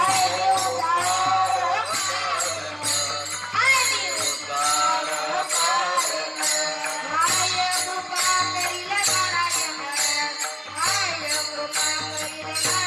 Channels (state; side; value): identical; both; correlation 1.00